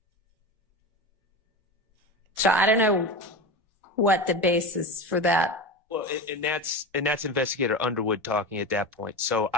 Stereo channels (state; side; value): normal; both; correlation 0.25